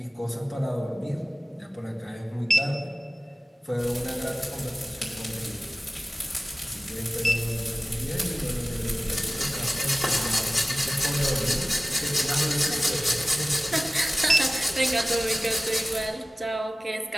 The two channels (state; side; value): normal; both; correlation 0.96